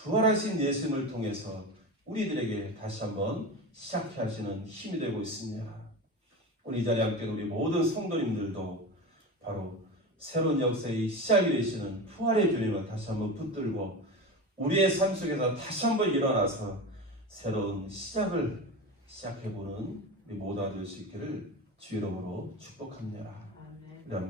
예수님을 통해서 우리들에게 다시 한번 시작해 하시는 힘이 되고 있습니다. 오늘 이 자리에 함께 우리 모든 성도님들도 바로 새로운 역사의 시작이 되시는 부활의 주님을 다시 한번 붙들고 우리의 삶 속에서 다시 한번 일어나서 새로운 시작을 시작해보는 우리 모두가 될 수 있기를 주 이름으로 축복합니다. 우리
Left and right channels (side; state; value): both; normal; correlation 0.26